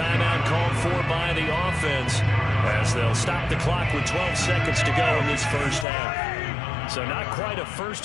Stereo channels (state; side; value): drops out; right; at 5.9 s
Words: called for by the offense as they'll stop the clock with 12 seconds to go in this first half. So not quite a